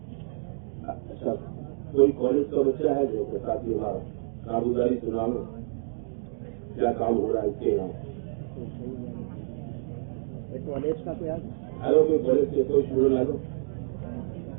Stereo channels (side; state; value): left; silent; digital silence